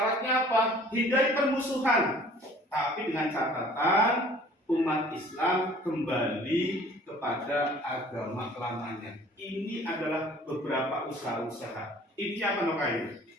apa? Hindari permusuhan. Tapi dengan catatan umat Islam kembali kepada agama lamanya. Ini adalah beberapa usaha-usaha. Ini apa namanya?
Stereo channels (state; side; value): normal; both; correlation 0.52